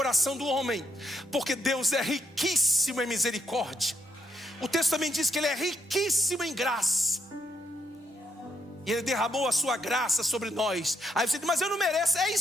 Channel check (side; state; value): both; normal; correlation 0.75